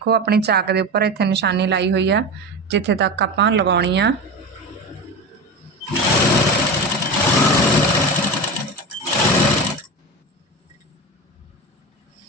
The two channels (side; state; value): both; normal; correlation 0.24